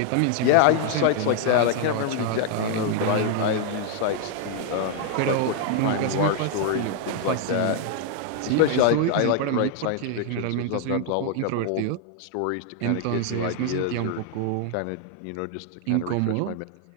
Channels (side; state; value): both; different; correlation 0.00